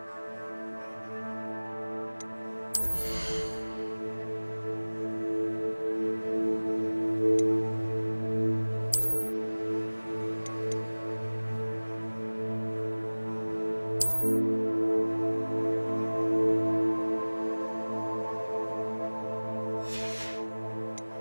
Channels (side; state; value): both; inverted; correlation -1.00